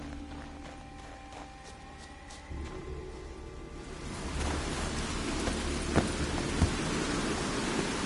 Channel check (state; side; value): identical; both; correlation 1.00